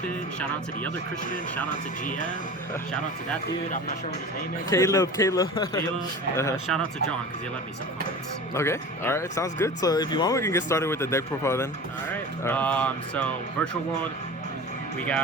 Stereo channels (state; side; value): normal; both; correlation 0.35